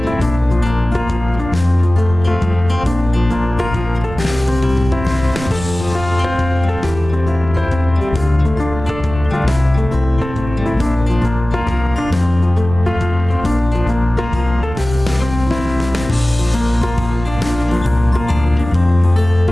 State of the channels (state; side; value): noise; right; rumble, 11 dB below the sound